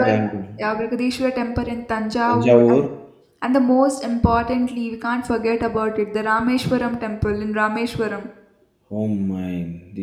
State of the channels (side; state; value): both; identical; correlation 1.00